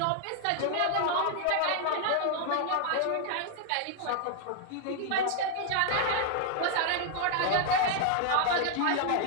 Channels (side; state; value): both; different; correlation 0.00